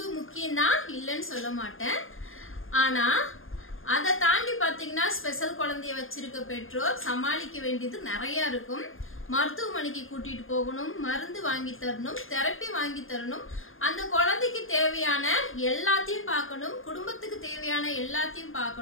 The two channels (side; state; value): right; late; 0.59 ms